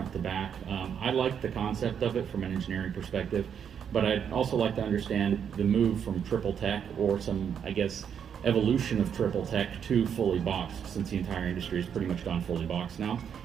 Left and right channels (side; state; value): left; quieter; 8.0 dB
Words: to back. I like the concept of it from an engineering perspective, but I'd also like to understand the move from triple tech, or some, I guess, evolution of triple tech to fully boxed, since the entire industry has pretty much gone fully boxed now.